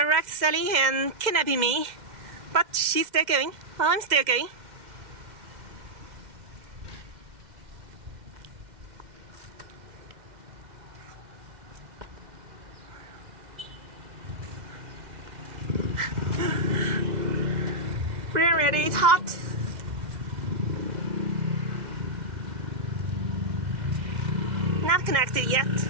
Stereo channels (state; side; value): late; left; 2.0 ms